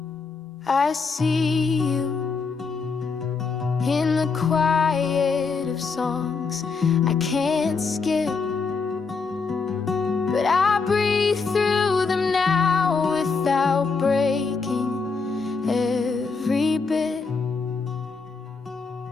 I see you in the quiet of songs I can't skip, but I breathe through them now without breaking every bit.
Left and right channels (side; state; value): right; quieter; 4.8 dB